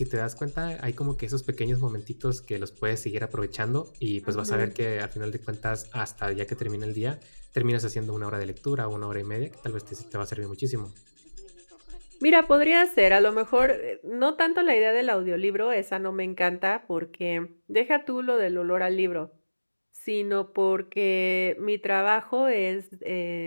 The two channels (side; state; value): both; inverted; correlation -1.00